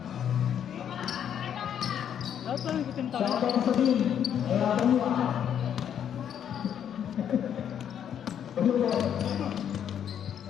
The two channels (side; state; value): right; quieter; 9.1 dB